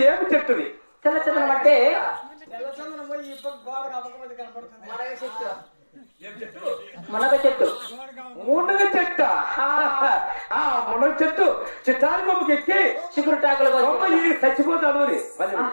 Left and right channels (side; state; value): both; inverted; correlation -1.00